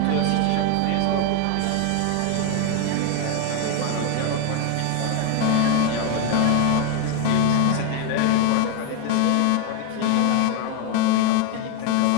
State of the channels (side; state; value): both; different; correlation 0.01